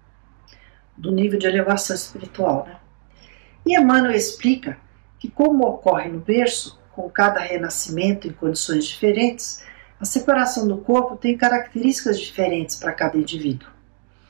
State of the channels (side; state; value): left; silent; 65 dB below the other